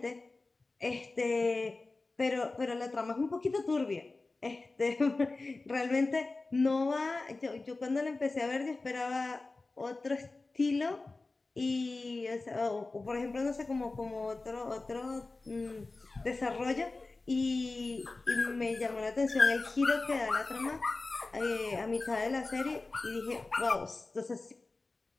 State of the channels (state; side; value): quieter; right; 3.5 dB